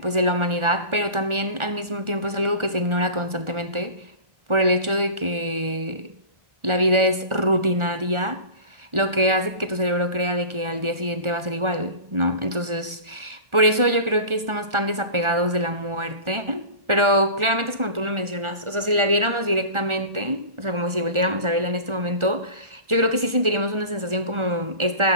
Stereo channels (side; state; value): left; late; 1.4 ms